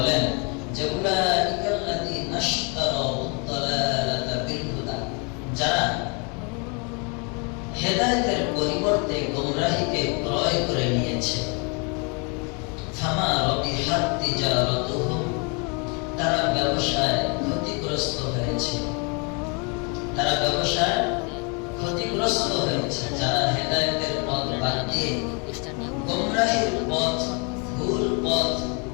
যে উলাইকাল্লাযীনা ইশতারাউদ দালালাতা বিল হুদা, যারা হেদায়েতের পরিবর্তে গোমরাহিকে ক্রয় করে নিয়েছে, ফামা রাবিহাত তিজারাতুহুম, তারা ব্যবসায় ক্ষতিগ্রস্ত হয়েছে, তারা ব্যবসায় ক্ষতিগ্রস্ত হয়েছে। যারা হেদায়েতের পথ বাদ দিয়ে গোমরাহির পথ, ভুল পথ,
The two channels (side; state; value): right; quieter; 33.9 dB